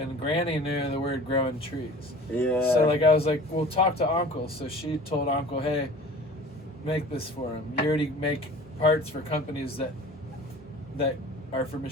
Granny knew the word growing trees. Yeah. So like I was like, well, talk to Uncle. So she told Uncle, hey, make this for him. You already make parts for companies that are for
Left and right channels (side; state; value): both; normal; correlation 0.43